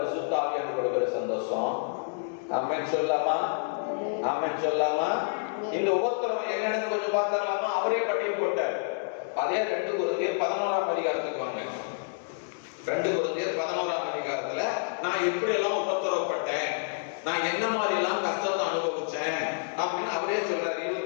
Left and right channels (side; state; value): right; silent; digital silence